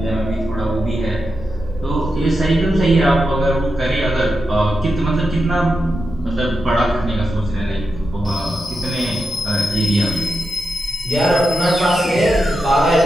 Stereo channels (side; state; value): both; normal; correlation 0.88